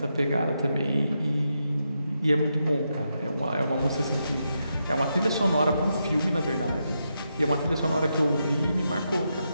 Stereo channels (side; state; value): both; inverted; correlation -0.84